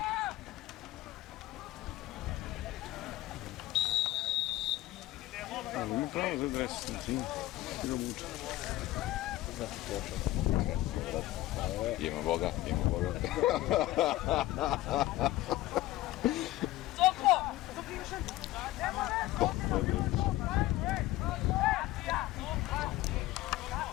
Ali ima pravo za dres, znači ga muče. Znači počeo. Ima Boga. Soko!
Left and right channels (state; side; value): quieter; right; 16.3 dB